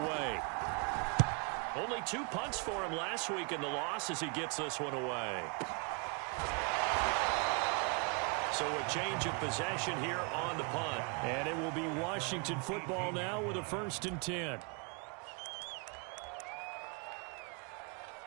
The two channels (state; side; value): quieter; left; 35.1 dB